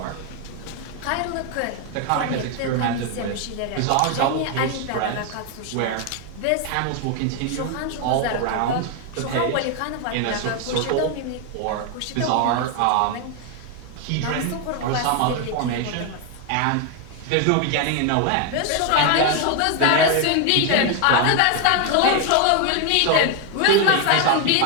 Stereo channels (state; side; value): different; both; correlation 0.01